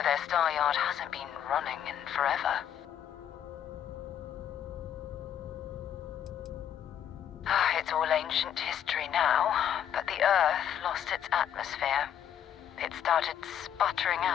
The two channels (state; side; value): quieter; right; 9.8 dB